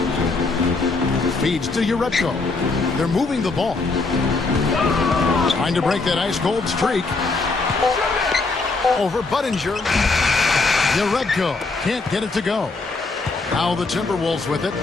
Feeds to Uredko. They're moving the ball. Trying to break that ice-cold streak. Over Buttinger. Uredko can't get it to go. Now the Timberwolves with it.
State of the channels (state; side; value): quieter; right; 3.8 dB